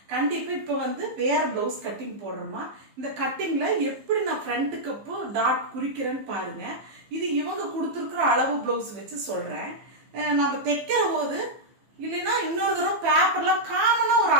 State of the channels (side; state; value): left; late; 15 ms